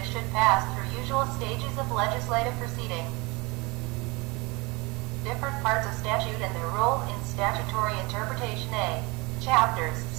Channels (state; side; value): quieter; left; 25.6 dB